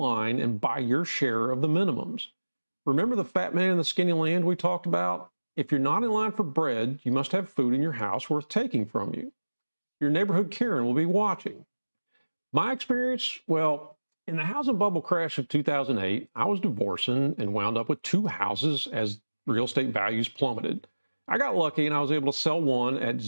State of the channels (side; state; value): both; inverted; correlation -1.00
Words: and buy your share of the minimums. Remember the fat man in the skinny land we talked about? If you're not in line for bread, you must have food in your house worth taking from you. Your neighborhood Karen will be watching. My experience, well, in the housing bubble crash of 2008, I was divorcing and wound up with 2 houses as real estate values plummeted. I got lucky and I was able to sell one at